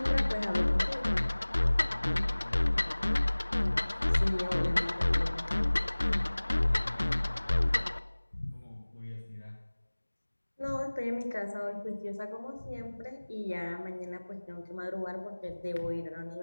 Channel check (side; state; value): both; inverted; correlation -1.00